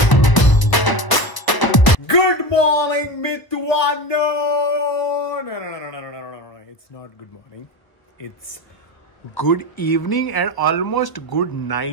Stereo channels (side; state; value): right; late; 1.0 ms